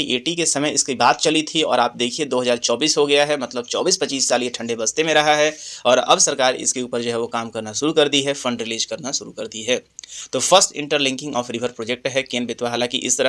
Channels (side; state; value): both; identical; correlation 1.00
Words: के समय इसकी बात चली थी और आप देखिए 2024 हो गया है, मतलब 24-25 साल ये ठंडे बस्ते में रहा है और अब सरकार इसके ऊपर जो है वो काम करना शुरू कर दी है, फंड रिलीज करना शुरू कर दी है। तो first interlinking of river project है केन बेतवा। हालांकि इस तरह